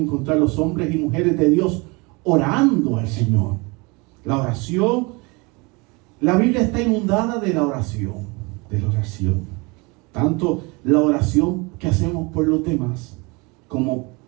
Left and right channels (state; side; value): quieter; left; 27.3 dB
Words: los hombres y mujeres de Dios orando al Señor. La oración, la Biblia está inundada de la oración. Tanto la oración que hacemos por los demás, como